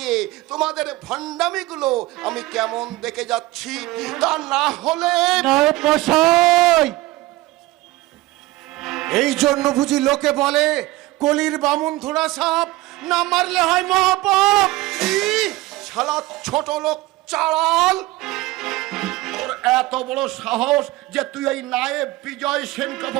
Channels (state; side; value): quieter; left; 18.9 dB